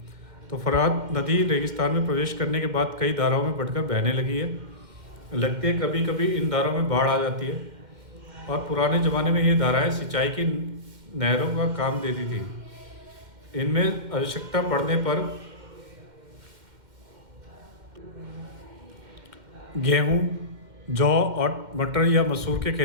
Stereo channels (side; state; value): left; late; 2.1 ms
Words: तो फरात नदी रेगिस्तान में प्रवेश करने के बाद कई धाराओं में बढ़कर बहने लगी है। लगती है कभी कभी इन धाराओं में बाढ़ आ जाती है, और पुराने ज़माने में ये धाराएं सिंचाई की नहरों का काम देती थी। इनमें आवश्यकता पड़ने पर गेहूं, जौ और मटर या मसूर के